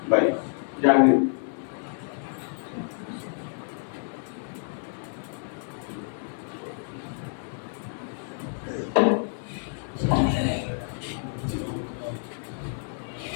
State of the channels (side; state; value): right; silent; digital silence